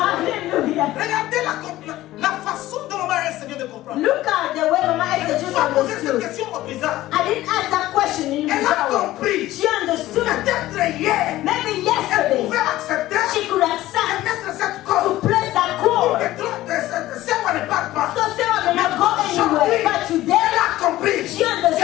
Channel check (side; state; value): right; quieter; 15.8 dB